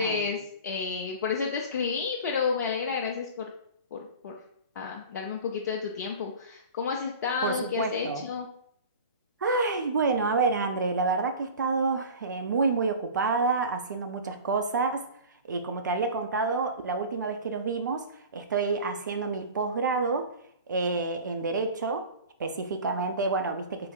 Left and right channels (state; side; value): inverted; both; correlation -0.36